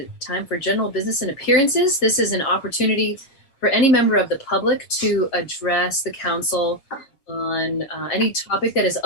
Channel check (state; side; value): late; right; 7.3 ms